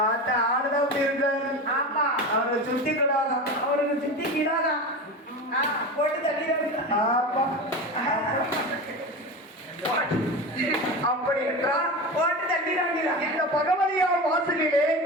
ஆடுதான் அப்படி இருக்காரு. ஆமா, அவருக்கு சுத்தி கிடாதான். அவருக்கு சுத்தி கிடாதான். போட்டு தள்ளி. ஆமா, அப்படி என்றால் போட்டு தள்ளி. இந்த பகவதியார் வாசலிலே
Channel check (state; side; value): normal; both; correlation 0.26